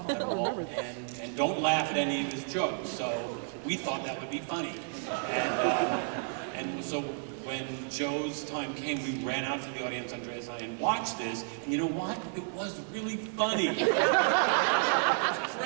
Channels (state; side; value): silent; left; 57 dB below the other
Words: at all, and don't laugh at any of his jokes. So we thought that would be funny. And so when Joe's time came, we ran out to the audience, Andreas and I, and watched this, and you know what? It was really funny. It was